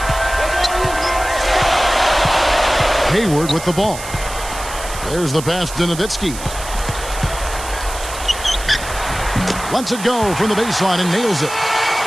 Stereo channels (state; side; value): noise; right; hiss, 11 dB below the sound